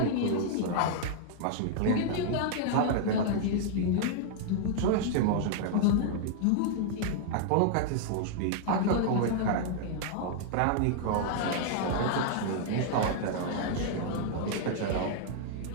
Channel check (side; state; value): both; different; correlation -0.01